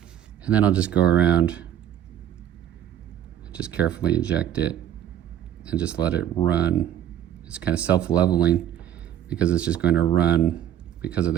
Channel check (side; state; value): left; quieter; 10.9 dB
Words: and then I'll just go around, just carefully inject it, and just let it run. It's kind of self-leveling because it's just going to run because of